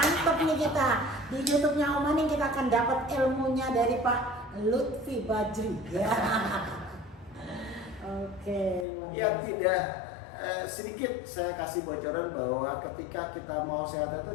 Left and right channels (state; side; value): drops out; right; at 8.8 s